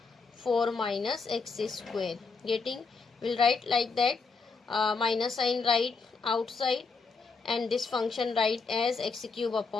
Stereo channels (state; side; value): quieter; right; 4.5 dB